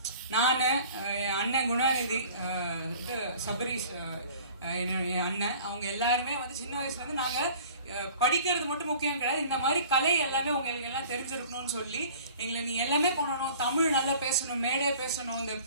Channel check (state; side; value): inverted; both; correlation -0.47